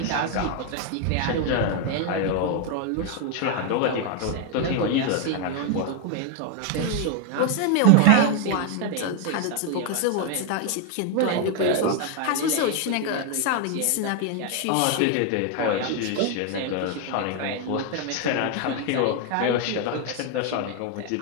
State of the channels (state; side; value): different; both; correlation 0.01